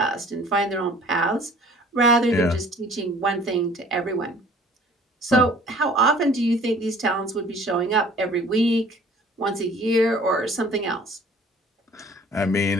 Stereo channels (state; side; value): normal; both; correlation 0.52